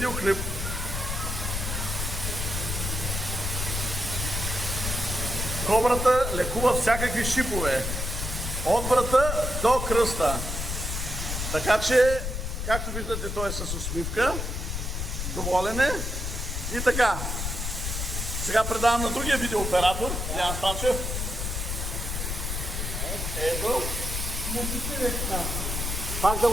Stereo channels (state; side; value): noise; left; rumble, 3 dB below the sound